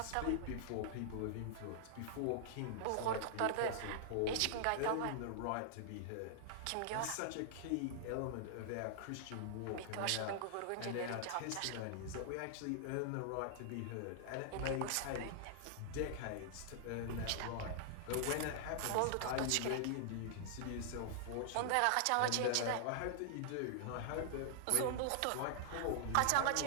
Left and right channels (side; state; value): both; different; correlation -0.01